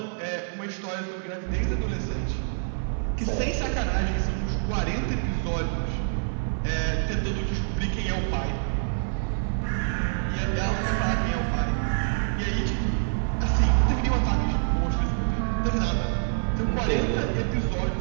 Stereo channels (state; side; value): silent; left; digital silence